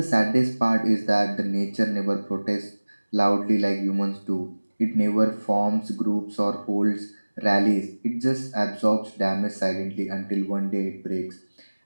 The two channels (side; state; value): both; inverted; correlation -1.00